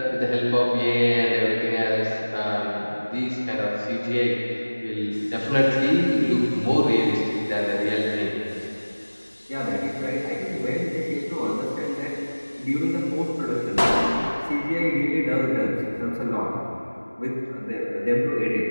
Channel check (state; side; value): inverted; both; correlation -1.00